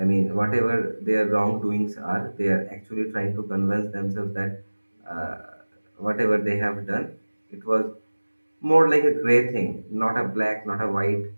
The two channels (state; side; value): inverted; both; correlation -1.00